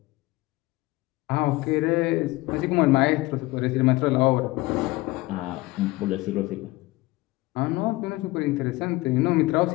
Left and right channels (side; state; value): right; quieter; 20.6 dB